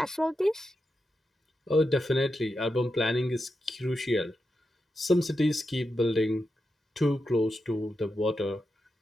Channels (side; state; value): both; normal; correlation 0.88